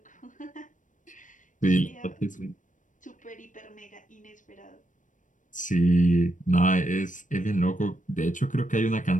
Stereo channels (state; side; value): late; right; 0.37 ms